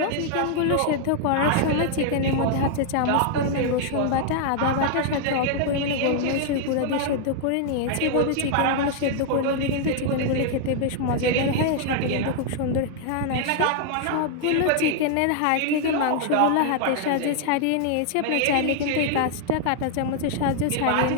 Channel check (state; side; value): different; both; correlation -0.01